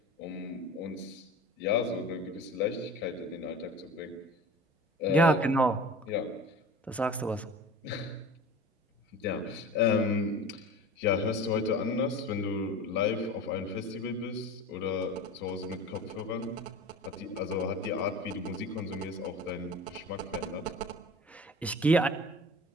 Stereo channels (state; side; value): normal; both; correlation 0.37